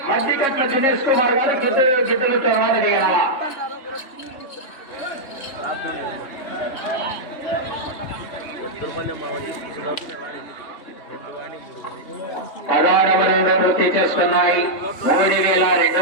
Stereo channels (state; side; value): late; right; 3.1 ms